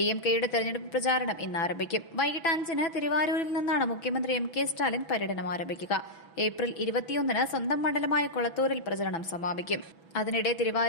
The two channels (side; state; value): right; late; 6.0 ms